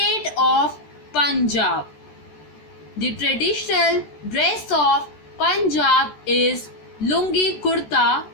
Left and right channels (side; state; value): right; late; 13 ms